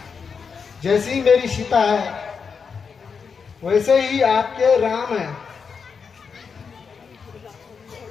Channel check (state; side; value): quieter; right; 5.8 dB